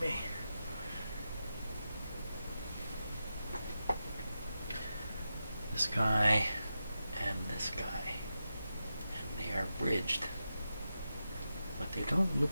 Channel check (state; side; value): inverted; both; correlation -0.89